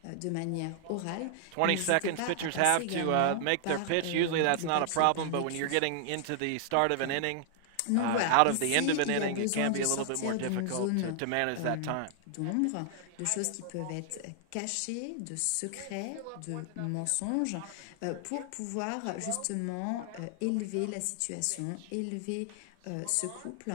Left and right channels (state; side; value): different; both; correlation 0.00